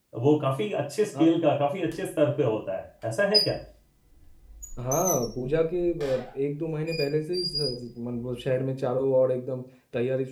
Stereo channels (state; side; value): identical; both; correlation 1.00